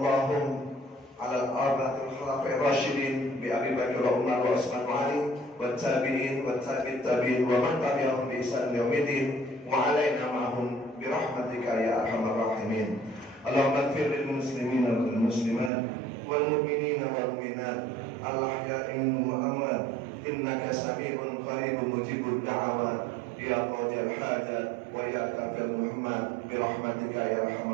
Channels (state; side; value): drops out; left; at 15.7 s